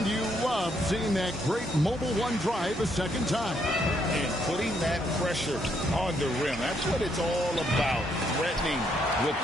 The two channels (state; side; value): normal; both; correlation 0.74